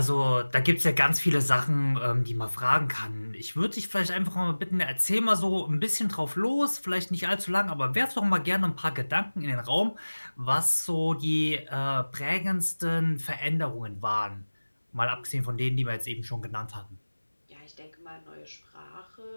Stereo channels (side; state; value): both; inverted; correlation -1.00